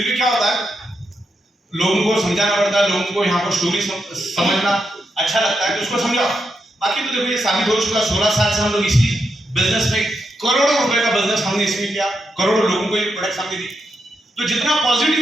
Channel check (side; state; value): both; normal; correlation 0.83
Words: भी क्या होता है, लोगों को समझाना पड़ता है, लोगों को यहाँ पर स्टोरी समझना अच्छा लगता है तो उसको समझाओ। बाकी तो देखो ये साबित हो चुका, 16 साल से हम लोग इसी बिजनेस में करोड़ों रुपए का बिजनेस हमने इसमें किया, करोड़ों लोगों को ये प्रोडक्ट हमने दी। तो जितना